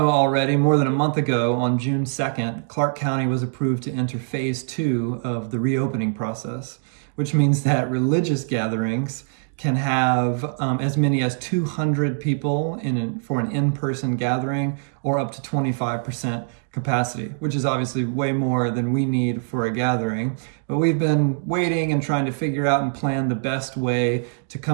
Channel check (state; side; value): silent; left; digital silence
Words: already, more than a month ago on June 2nd, Clark County was approved to enter phase 2 of the reopening process, which means that religious gatherings can have as many as 200 people for an in-person gathering, or up to 25% capacity, which is obviously way more than we need for a gathering. But we've been waiting and trying to figure out and plan the best way to